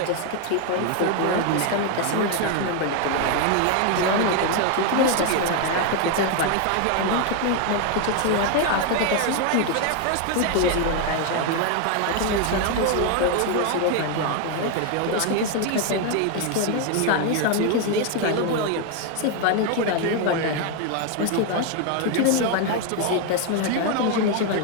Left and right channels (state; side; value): different; both; correlation 0.01